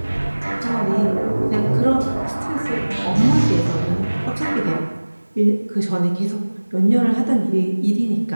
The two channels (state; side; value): inverted; both; correlation -1.00